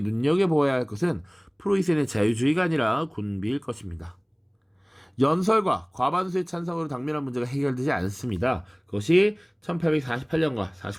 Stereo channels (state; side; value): identical; both; correlation 1.00